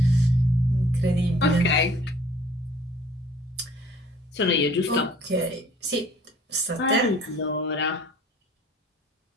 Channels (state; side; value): normal; both; correlation 0.54